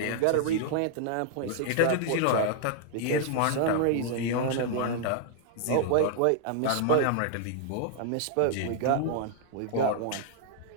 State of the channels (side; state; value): both; different; correlation 0.00